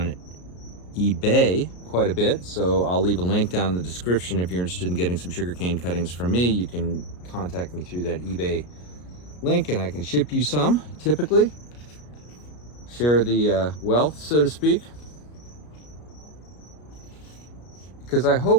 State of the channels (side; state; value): right; late; 33 ms